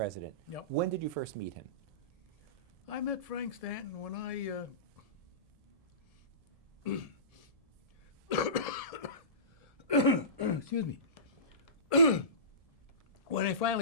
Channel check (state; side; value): late; left; 1.7 ms